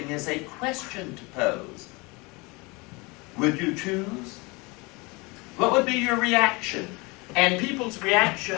as a question to pose. Would you choose? What would be your reaction? And people's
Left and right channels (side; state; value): right; quieter; 26.2 dB